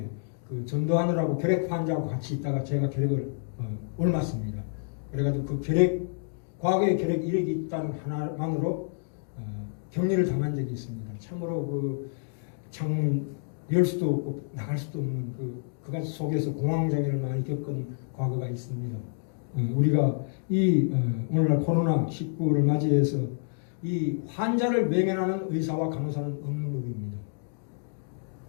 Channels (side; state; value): right; silent; digital silence